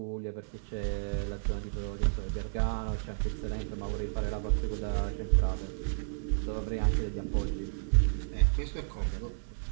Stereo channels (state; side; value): silent; left; 56 dB below the other